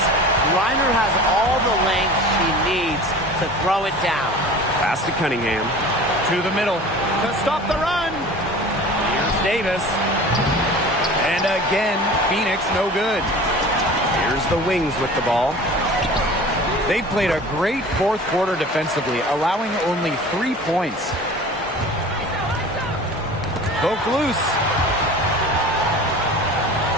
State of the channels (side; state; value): both; normal; correlation 0.40